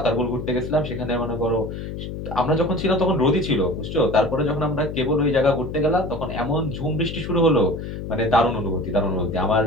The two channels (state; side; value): noise; left; hum, 7 dB below the sound